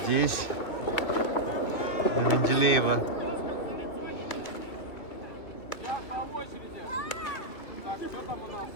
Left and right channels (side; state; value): right; late; 2.8 ms